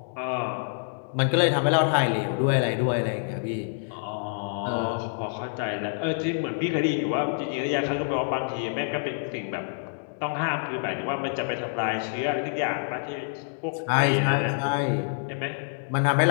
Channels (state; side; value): silent; right; digital silence